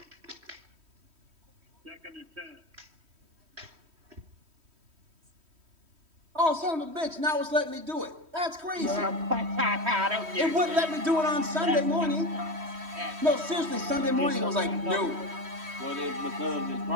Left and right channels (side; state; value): left; late; 3.1 ms